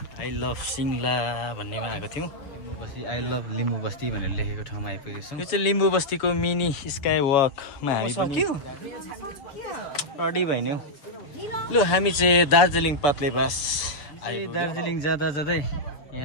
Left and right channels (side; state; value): right; late; 7.0 ms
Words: आई लभ सिङ्ला भन्नेमा आएको थियौँ। लिम्बू बस्ती आई लभ लिम्बू बस्ती भनेर लेखेको ठाउँमा आइपुगेको छौँ। यो चाहिँ लिम्बू बस्तीको मिनी स्काई वकमा हामी पनि रेडी भइन्यौ। लु हामी चाहिँ दार्जिलिङ पात्लेबास दार्जिलिङ जाँदा जाँदै